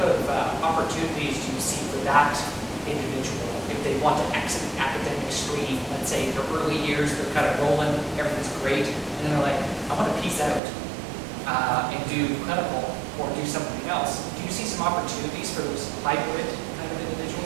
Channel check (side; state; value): left; drops out; at 10.6 s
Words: of opportunities do you see for that individual if they want to exit the academic stream? Let's say in their early years, they're kind of rolling, everything's great, and then they're like, I want to piece out and do clinical or do something else. Do you see some opportunities for those hybrid kind of